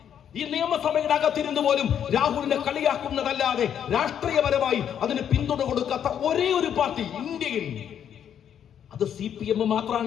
ഈ നിയമസഭയുടെ അകത്തിരുന്ന് പോലും രാഹുലിനെ കളിയാക്കുന്നതല്ലാതെ രാഷ്ട്രീയപരമായി അതിന് പിന്തുണ കൊടുക്കാത്ത ഒരേ ഒരു പാർട്ടി ഇന്ത്യയിൽ, അത് CPM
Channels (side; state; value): right; quieter; 9.1 dB